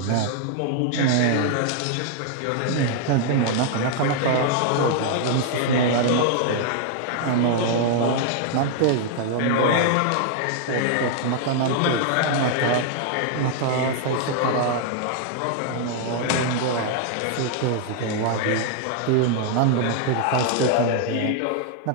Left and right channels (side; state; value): both; different; correlation 0.00